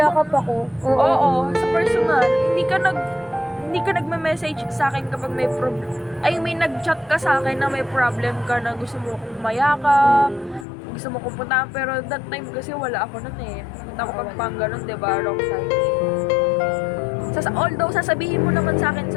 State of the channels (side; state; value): right; drops out; at 10.7 s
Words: ako. Oo, sa personal. Hindi ka nagme-message sa akin kapag may problem. Ay, may nag-chat ka sa akin na may problem ka na gusto mo akong mayakap, gusto mo kong puntahan, pero that time kasi wala ako nun eh. Punta ako Pampanga nun, diba? Wrong timing. Although, sasabihin mo naman sa akin